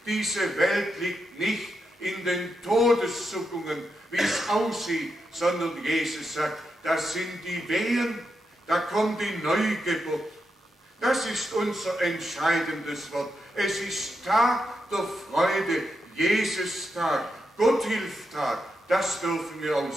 diese Welt liegt nicht in den Todeszuckungen, wie es aussieht, sondern Jesus sagt, das sind die Wehen, da kommt die Neugeburt. Das ist unser entscheidendes Wort. Es ist Tag der Freude, Jesus-Tag, Gotthilftag, das dürfen wir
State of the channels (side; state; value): both; normal; correlation 0.85